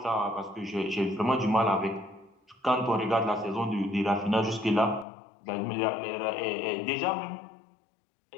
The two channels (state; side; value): drops out; right; at 5.1 s